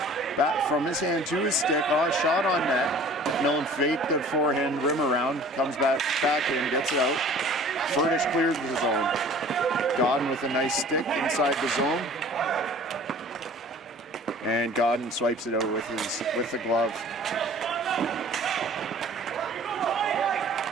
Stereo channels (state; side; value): normal; both; correlation 0.47